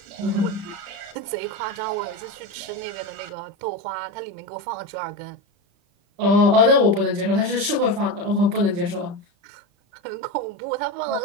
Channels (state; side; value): late; left; 35 ms